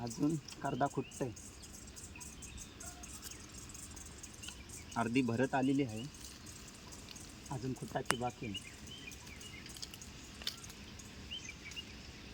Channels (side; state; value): both; identical; correlation 1.00